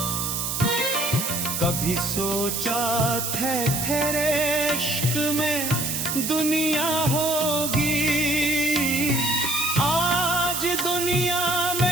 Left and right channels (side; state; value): right; noise; hiss, 2 dB below the sound